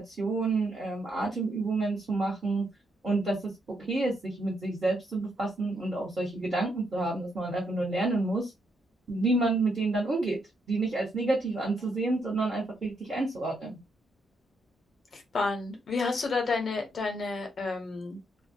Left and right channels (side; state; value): both; normal; correlation 0.77